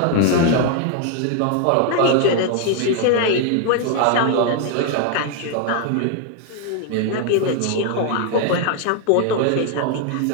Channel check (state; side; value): different; both; correlation 0.00